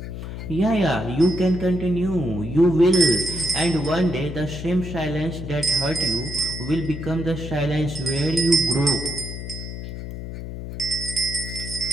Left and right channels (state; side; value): noise; left; hum, 8 dB below the sound